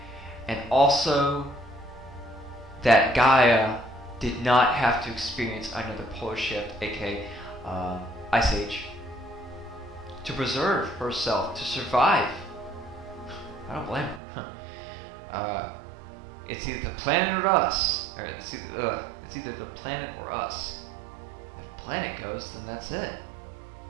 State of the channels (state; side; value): drops out; left; at 14.2 s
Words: And also that Gaia did not have to experience another polar shift, aka ice age, to preserve herself, to survive. I don't blame her. It's either the planet or us. Or it's either the planet or us. If the planet goes, then that's it.